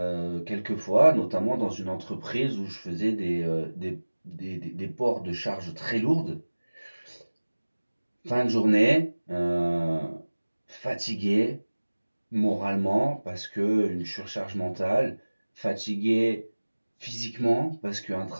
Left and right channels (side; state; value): both; inverted; correlation -1.00